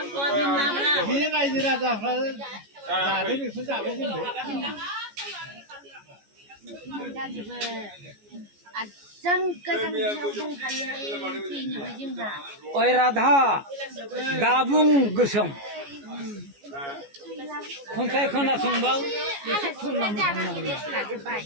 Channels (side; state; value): left; late; 14 ms